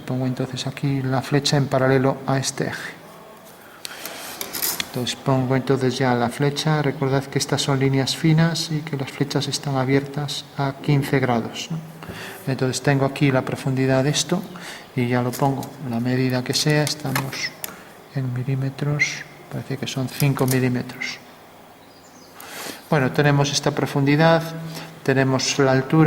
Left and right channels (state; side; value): identical; both; correlation 1.00